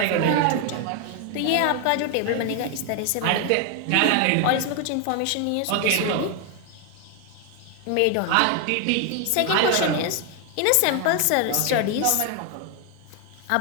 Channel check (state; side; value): different; both; correlation 0.01